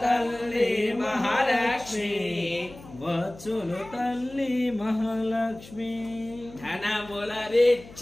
తల్లి మహాలక్ష్మి వచ్చును తల్లి మహాలక్ష్మి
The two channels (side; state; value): left; noise; hum, 19 dB below the sound